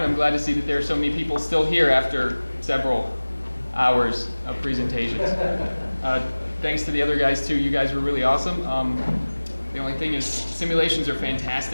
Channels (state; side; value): inverted; both; correlation -1.00